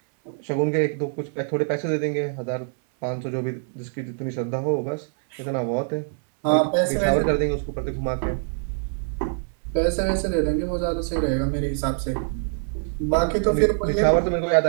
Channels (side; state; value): left; silent; 62 dB below the other